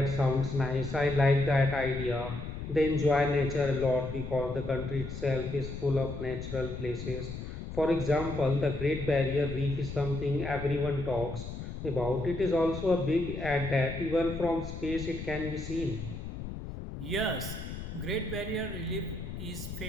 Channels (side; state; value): left; noise; rumble, 8 dB below the sound